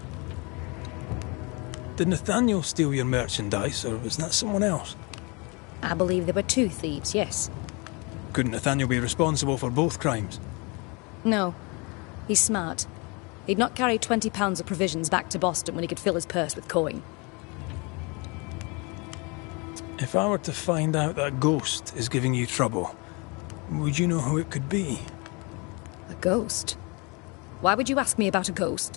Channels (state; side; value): quieter; right; 29.6 dB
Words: Did Nathaniel steal your merchandise, or was that someone else? I believe there were two thieves, yes. Couldn't Nathaniel be responsible for both crimes? No. He's smart. He'd not carry 20 pounds of provisions back to Boston when he could fill his purse with coin. If I were to find out that ghost is giving you trouble, would you know who it could be? A ghost? Why would you ask me about a